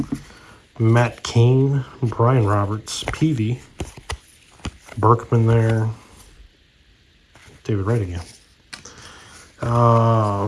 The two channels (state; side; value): identical; both; correlation 1.00